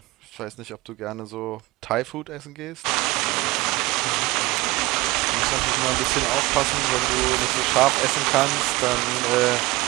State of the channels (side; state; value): left; quieter; 20.7 dB